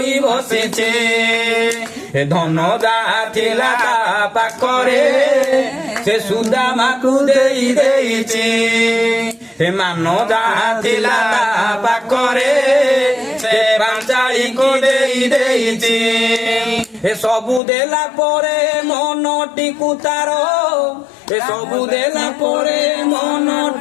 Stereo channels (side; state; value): right; drops out; at 17.6 s